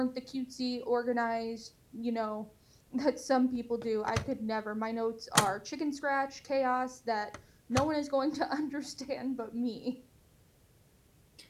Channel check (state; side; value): identical; both; correlation 1.00